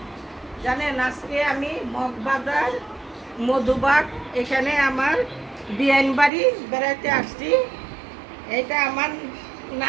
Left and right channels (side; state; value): left; drops out; at 6.3 s